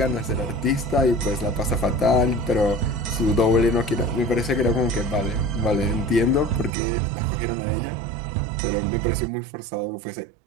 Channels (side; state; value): left; drops out; at 6.8 s